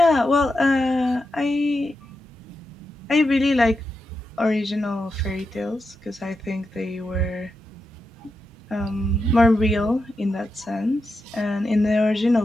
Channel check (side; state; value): both; normal; correlation 0.88